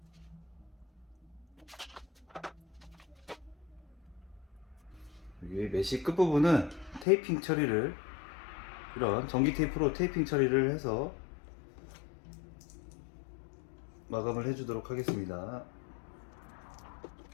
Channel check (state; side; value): drops out; right; at 7.1 s